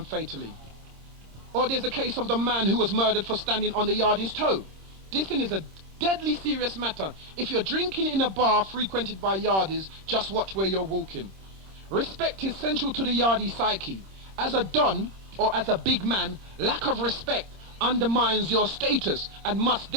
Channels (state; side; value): late; left; 26 ms